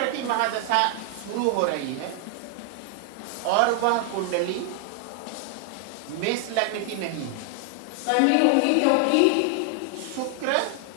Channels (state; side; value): different; both; correlation 0.00